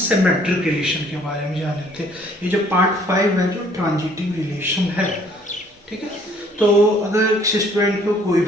रिलेशन के बारे में जाने थे। ये जो पार्ट 5 है जो ट्रांजिटिव रिलेशन है, ठीक है। तो अगर किसी स्टूडेंट को कोई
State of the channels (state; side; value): normal; both; correlation 0.60